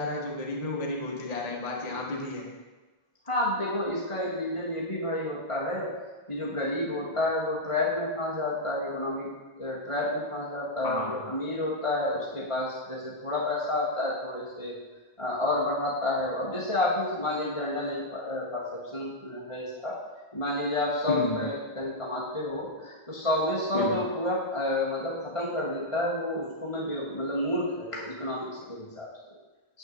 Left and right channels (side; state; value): right; late; 1.5 ms